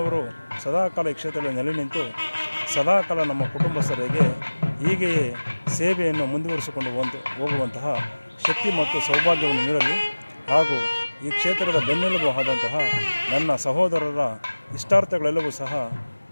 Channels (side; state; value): both; inverted; correlation -1.00